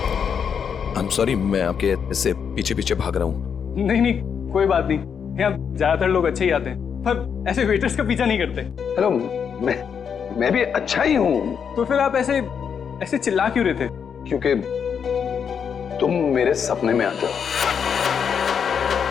आई एम सॉरी, मैं आपके ऐसे पीछे पीछे भाग रहा हूँ। नहीं नहीं, कोई बात नहीं। यहाँ ज्यादातर लोग अच्छे ही आते हैं, पर ऐसे वेटर्स का पीछा नहीं करते। हेलो, मैं भी अच्छा ही हूँ। तो फिर आप ऐसे ऐसे चिल्ला क्यों रहे थे? क्योंकि तुम मेरे सपने में आते हो।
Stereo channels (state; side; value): quieter; right; 7.1 dB